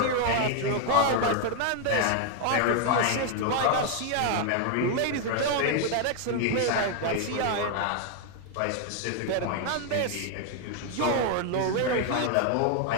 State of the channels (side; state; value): both; different; correlation 0.00